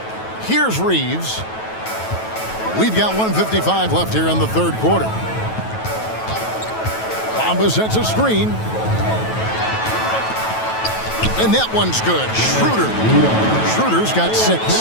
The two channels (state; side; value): late; right; 9.2 ms